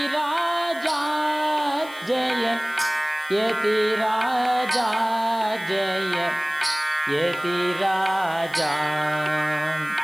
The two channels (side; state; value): left; noise; hiss, 21 dB below the sound